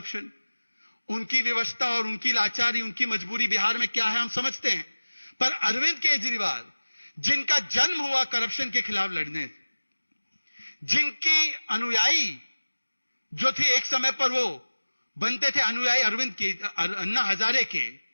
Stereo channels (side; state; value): both; inverted; correlation -1.00